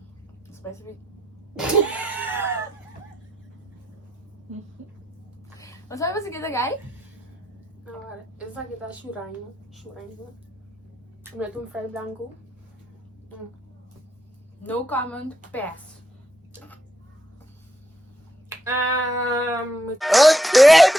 Isso vai ser... Mas sabe você que é guy? Agora, esse aqui tá churrando. Churrando. Mete um fry branco. No comment, pass.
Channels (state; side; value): normal; both; correlation 0.80